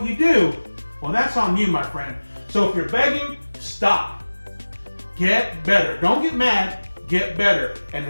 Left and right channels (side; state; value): both; inverted; correlation -1.00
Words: you do, well, that's on you, my friend. So if you're begging, stop. Get better. Don't get mad. Get better. And